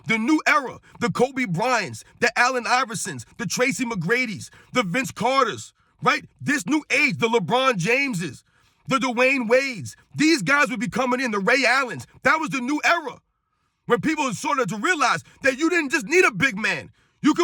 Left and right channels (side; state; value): both; identical; correlation 1.00